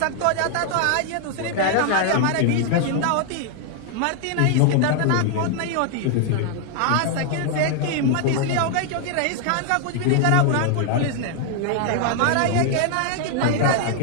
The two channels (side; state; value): both; different; correlation 0.00